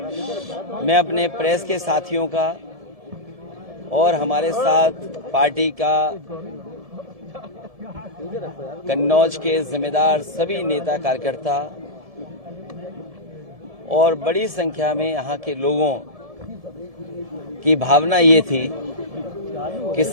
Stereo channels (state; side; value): late; left; 1.7 ms